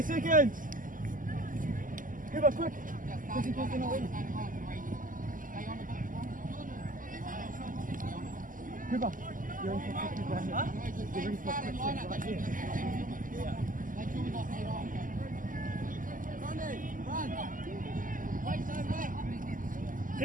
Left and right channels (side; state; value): left; late; 0.39 ms